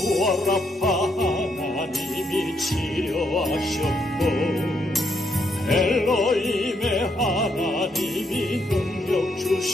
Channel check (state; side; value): normal; both; correlation 0.76